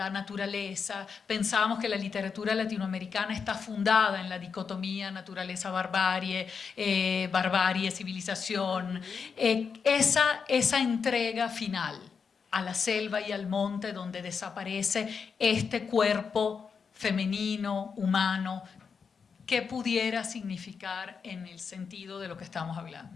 naturaleza. Pensábamos que la literatura latinoamericana está fundada en la dicotomía naturaleza-barbarie, barbarie-civilización. Esa entrega final a la selva y al monte donde desaparece este cuerpo femenino, humano, ¿qué pudiera significar en el sentido de lo que estamos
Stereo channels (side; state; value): right; quieter; 5.9 dB